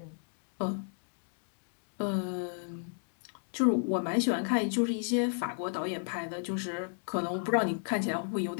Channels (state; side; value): silent; right; digital silence